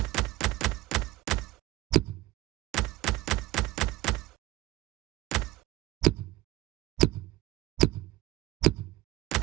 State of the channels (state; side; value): quieter; left; 17.9 dB